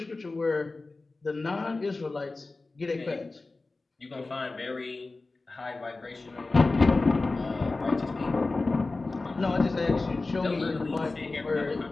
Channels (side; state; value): right; quieter; 3.4 dB